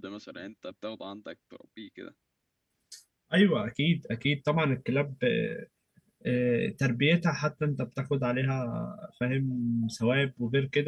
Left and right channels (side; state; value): both; identical; correlation 1.00